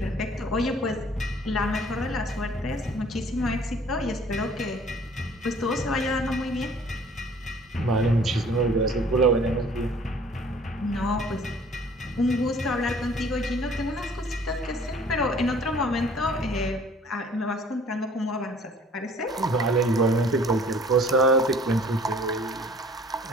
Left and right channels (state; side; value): normal; both; correlation 0.53